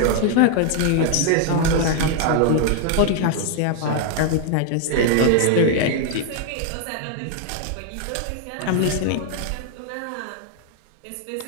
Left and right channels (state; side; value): different; both; correlation 0.00